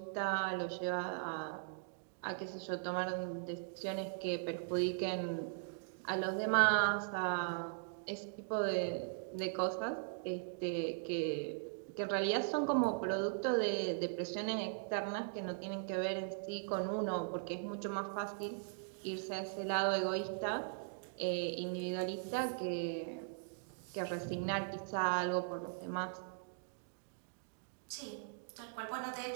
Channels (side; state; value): left; silent; digital silence